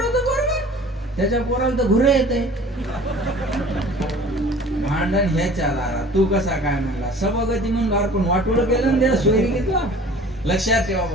पोरग, त्याच्या पोराला तर घुरे येते. भांडण ह्याच्या दारात, तू कसा काय म्हणला, सभागती म्हणून अर्पण वाटोळं केलं ना, सोयरी घेतला. लक्षात ठेवा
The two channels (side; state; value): both; normal; correlation 0.46